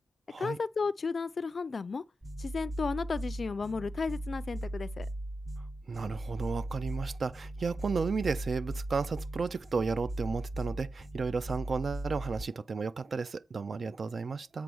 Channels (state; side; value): normal; both; correlation 0.89